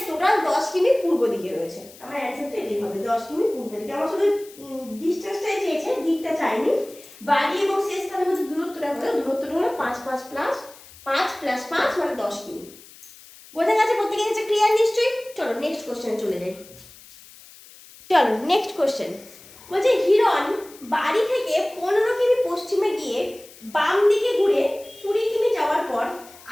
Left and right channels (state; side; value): noise; left; hiss, 21 dB below the sound